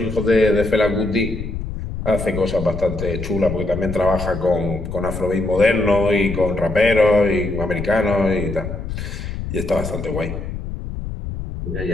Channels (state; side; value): noise; left; rumble, 7 dB below the sound